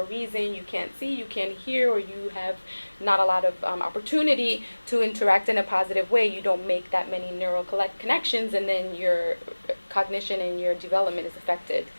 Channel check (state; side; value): inverted; both; correlation -1.00